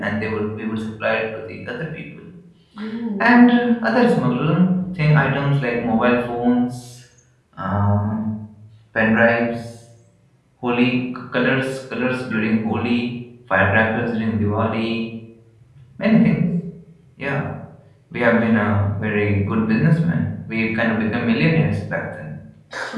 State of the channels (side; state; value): both; identical; correlation 1.00